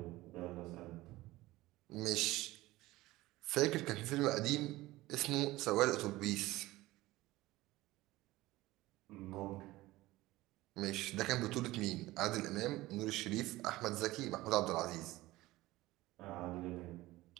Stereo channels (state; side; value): quieter; left; 18.2 dB